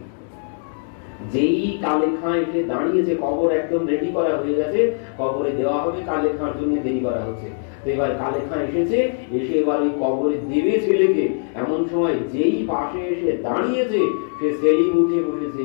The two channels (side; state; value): right; silent; digital silence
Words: যেই কালে খাঁ এসে দাঁড়িয়েছে, কবর একদম রেডি করা হয়ে গেছে, কবরে দেওয়া হবে, কালে খাঁর জন্য দেরি করা হচ্ছে। তো এবার কালে খাঁ এসেছে, এসে এবার ওই কবরে দেবে ছেলেকে। এমন সময় যেই পাশে এসে দাঁড়িয়েছে, সে সেলিম উঠে বসেছে।